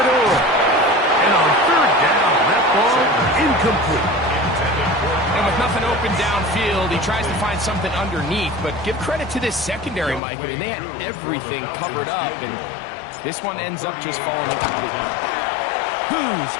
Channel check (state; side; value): drops out; right; at 10.2 s